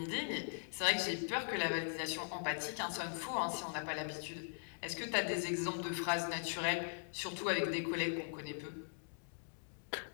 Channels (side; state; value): right; silent; digital silence